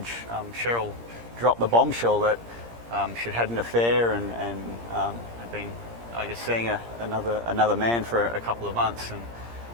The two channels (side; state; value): left; late; 17 ms